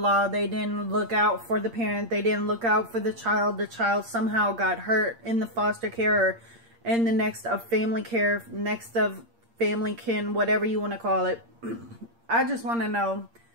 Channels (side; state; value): left; late; 8.6 ms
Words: They didn't look out for the parent. They didn't look out for the child. The child somehow got hurt in the foster care, or in the next of family care, next of family kin, whatever you want to call it. I just want to know.